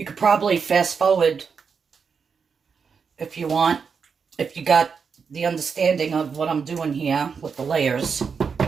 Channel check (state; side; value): quieter; left; 5.9 dB